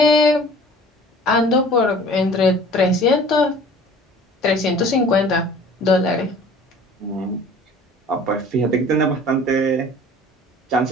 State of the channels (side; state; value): both; normal; correlation 0.47